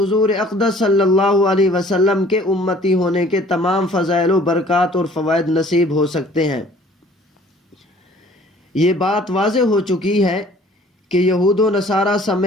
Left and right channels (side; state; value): both; normal; correlation 0.53